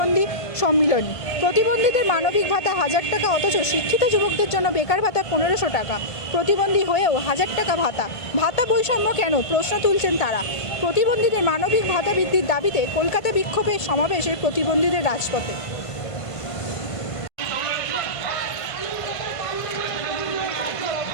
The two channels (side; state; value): right; late; 1.5 ms